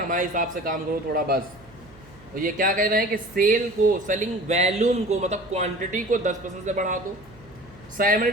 हिसाब से काम करो थोड़ा बस। और ये क्या कह रहे हैं कि सेल को, सेलिंग वैल्यूम को, मतलब क्वांटिटी को 10% से बढ़ा दो,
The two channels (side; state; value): right; noise; hum, 24 dB below the sound